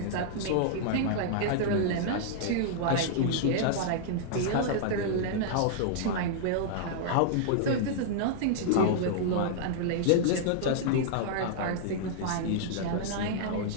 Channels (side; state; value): both; different; correlation -0.01